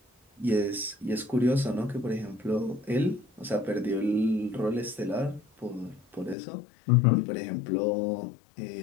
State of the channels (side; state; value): right; drops out; at 6.4 s